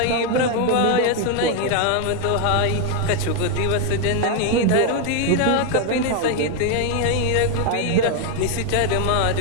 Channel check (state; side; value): different; both; correlation 0.01